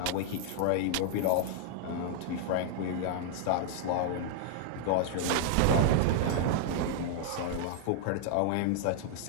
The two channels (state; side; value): different; both; correlation -0.01